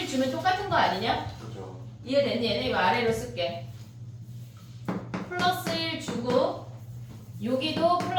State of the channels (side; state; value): both; identical; correlation 1.00